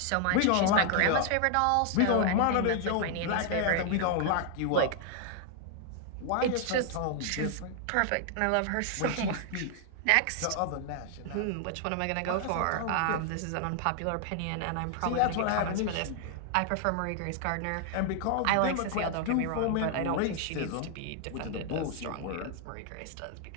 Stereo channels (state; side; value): different; both; correlation 0.00